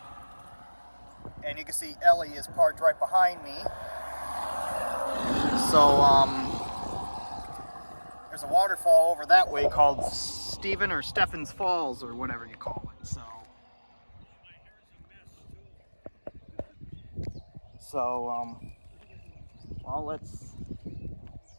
And you can see Ellie is parked right behind me. So, there's a waterfall over that way called Stephen's Falls, or whatever you call it.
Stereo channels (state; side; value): inverted; both; correlation -1.00